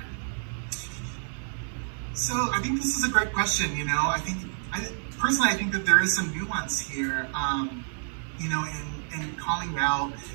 So I think this is a great question. You know, personally, I think that there is some nuance here. You know, in calling out,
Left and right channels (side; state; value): left; silent; digital silence